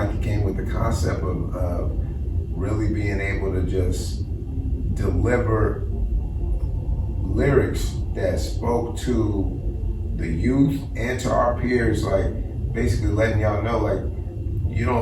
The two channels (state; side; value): identical; both; correlation 1.00